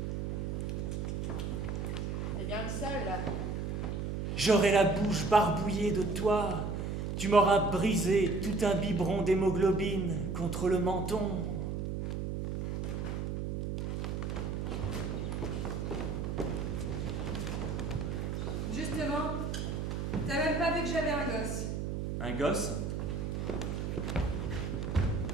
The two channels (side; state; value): right; noise; hum, 2 dB below the sound